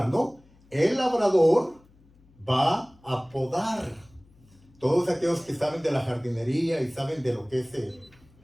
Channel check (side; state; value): left; noise; hum, 29 dB below the sound